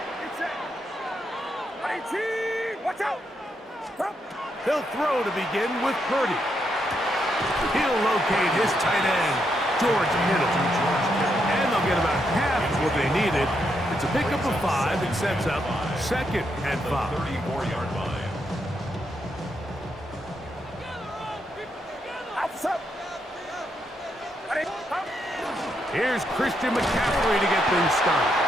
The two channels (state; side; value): normal; both; correlation 0.79